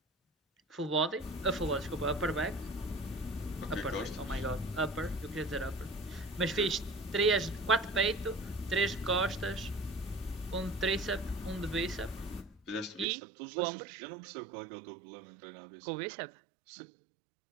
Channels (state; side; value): drops out; left; at 13.1 s